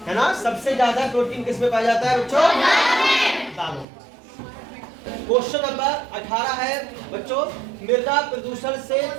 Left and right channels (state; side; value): drops out; left; at 3.9 s